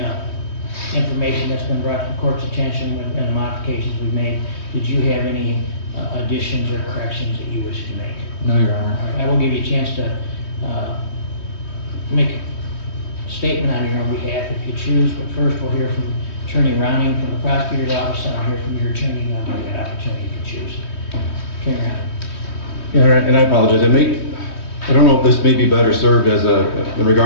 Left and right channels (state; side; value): late; right; 3.2 ms